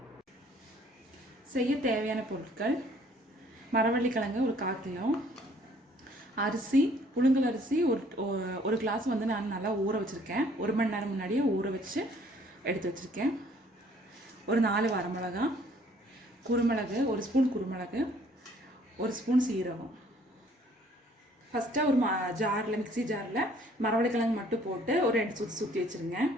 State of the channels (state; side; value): normal; both; correlation 0.59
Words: செய்ய தேவையான பொருட்கள்: மரவள்ளி கிழங்கு ஒரு 1/4 கிலோ, அரிசி புழுங்கல் அரிசி ஒரு கிளாஸ் வந்து நான் நல்லா ஊற வச்சுருக்கேன். 1 மணி நேரம் முன்னாடியே ஊற வச்சு எடுத்து வச்சுருக்கேன். ஒரு 4 வரமிளகா, குருமிளகு 1 ஸ்பூன், குருமிளகு 1 ஸ்பூன், சீரகம். ஃபஸ்ட்டு ஒரு மிக்ஸி ஜாரில் மரவள்ளி கிழங்கு மட்டும் போட்டு ஒரு 2 சுற்றி வச்சுருங்க.